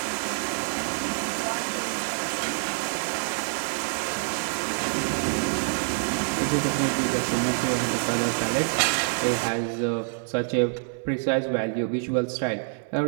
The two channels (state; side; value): silent; left; 61 dB below the other